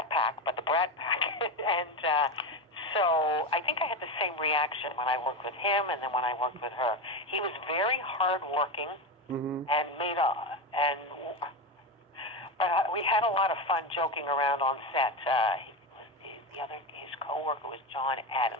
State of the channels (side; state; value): both; normal; correlation 0.16